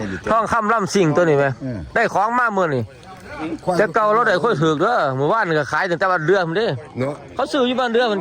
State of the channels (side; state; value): both; identical; correlation 1.00